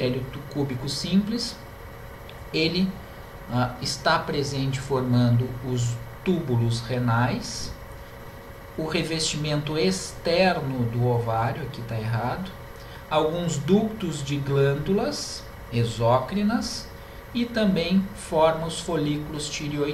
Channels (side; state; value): both; identical; correlation 1.00